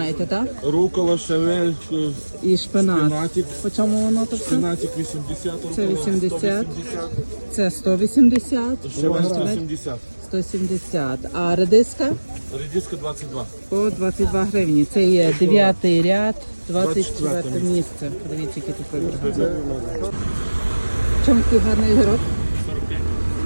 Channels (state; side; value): inverted; both; correlation -1.00